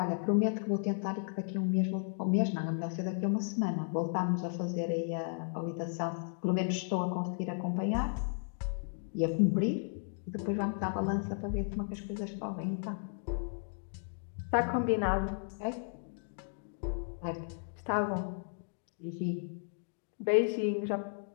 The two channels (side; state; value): right; silent; digital silence